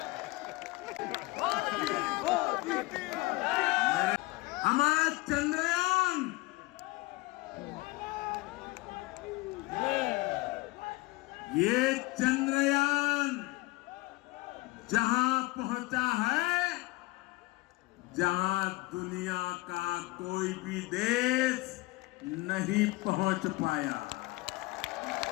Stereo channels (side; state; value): right; quieter; 21.7 dB